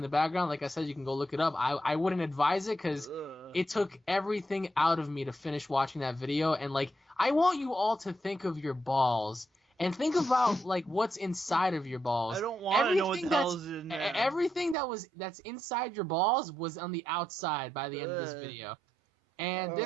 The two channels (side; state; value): left; drops out; at 14.8 s